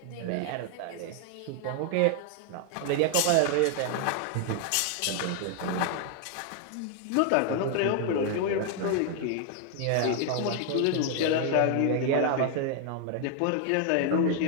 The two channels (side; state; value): both; different; correlation 0.00